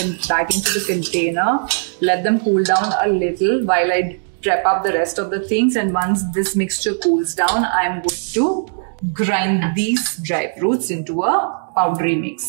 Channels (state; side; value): silent; left; digital silence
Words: back into the container. Let them cool down a little while I prep up the rest of the things, and once this mixture cools down, I'm going to grind these dry fruits into a powdery